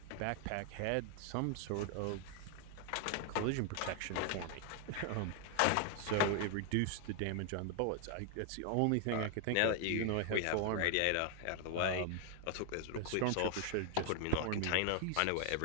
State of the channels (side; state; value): both; different; correlation 0.00